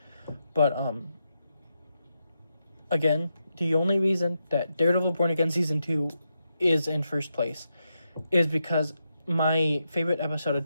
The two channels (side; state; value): both; inverted; correlation -0.85